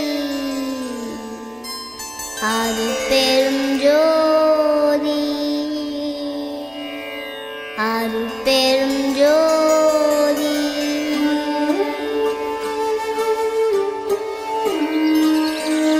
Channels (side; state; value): both; identical; correlation 1.00